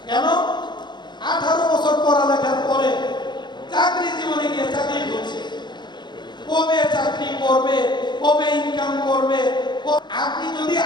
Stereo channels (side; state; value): right; late; 0.21 ms